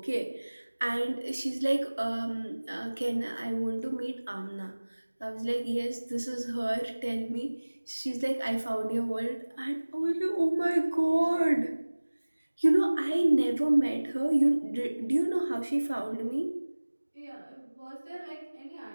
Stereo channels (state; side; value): inverted; both; correlation -1.00